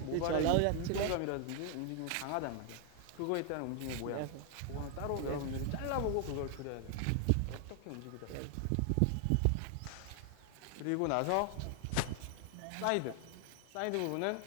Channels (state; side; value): different; both; correlation 0.00